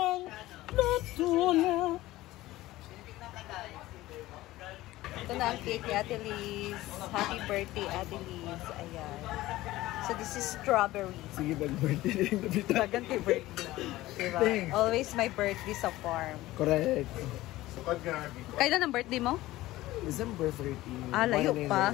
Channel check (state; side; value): quieter; right; 17.1 dB